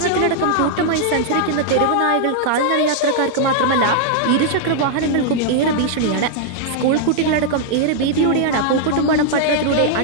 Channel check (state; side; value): different; both; correlation -0.01